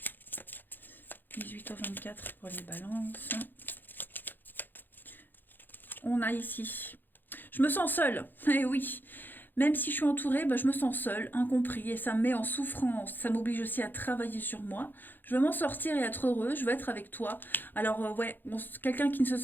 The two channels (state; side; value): late; right; 0.091 ms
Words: « 18 au 24 pour les balances. » On a ici. Je me sens seule. Eh oui. Même si je suis entourée, je me sens seule, incompris, et ça me met en souffrance. Ça m'oblige aussi à travailler sur moi. Je veux m'en sortir et être heureux. Je veux être avec toi. Alors, ouais, quelqu'un qui ne se